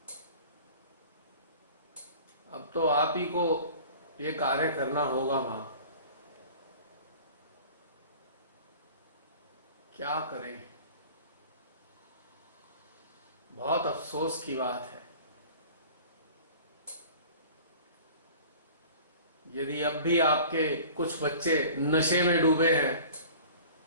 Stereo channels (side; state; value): both; inverted; correlation -0.43